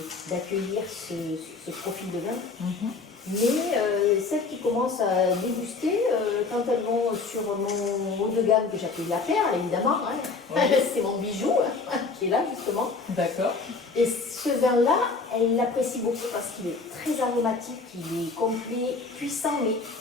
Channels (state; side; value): quieter; right; 4.2 dB